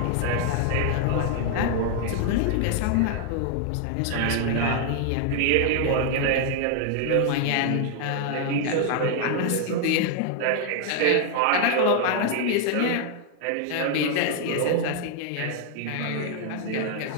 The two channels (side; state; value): both; different; correlation 0.00